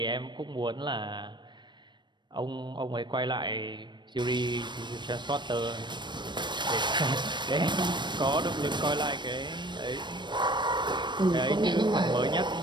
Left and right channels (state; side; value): late; left; 0.22 ms